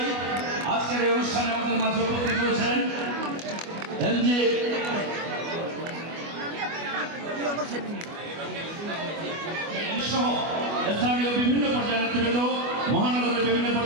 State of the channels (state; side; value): late; left; 25 ms